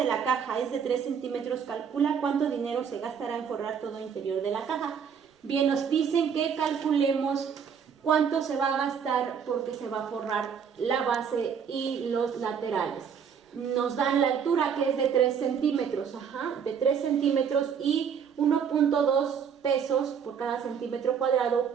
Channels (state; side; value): quieter; left; 7.2 dB